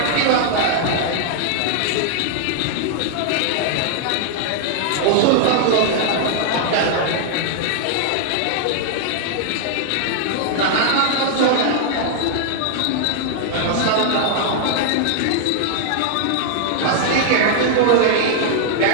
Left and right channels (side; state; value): both; different; correlation 0.00